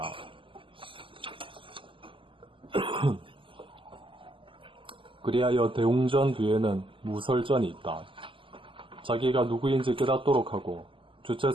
그리하여 대웅전 뒤에는 무설전이 있다. 자기가 누구인지 깨닫도록 하고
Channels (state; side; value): late; left; 0.25 ms